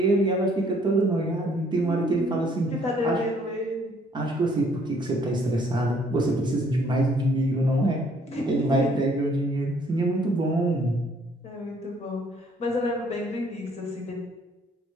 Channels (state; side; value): normal; both; correlation 0.63